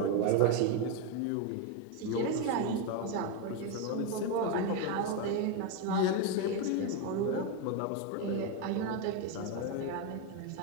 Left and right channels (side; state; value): both; different; correlation 0.02